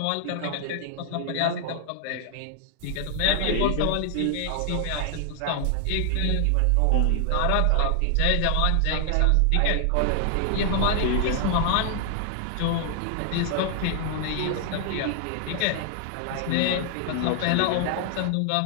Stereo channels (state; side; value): different; both; correlation 0.00